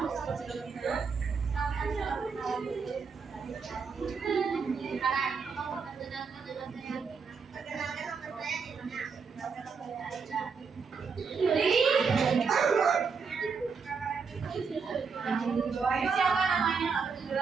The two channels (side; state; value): left; quieter; 5.4 dB